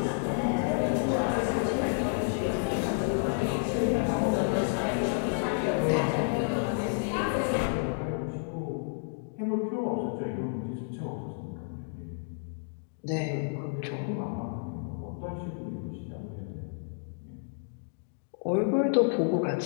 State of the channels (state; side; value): silent; right; digital silence